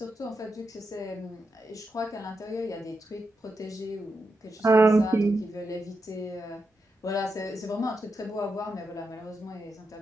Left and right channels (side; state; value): both; normal; correlation 0.86